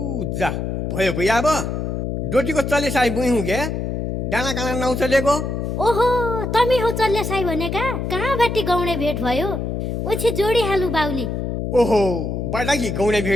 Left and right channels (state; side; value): noise; left; hum, 3 dB below the sound